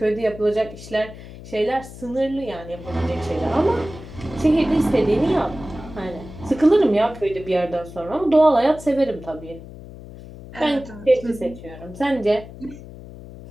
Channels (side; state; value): left; noise; hum, 15 dB below the sound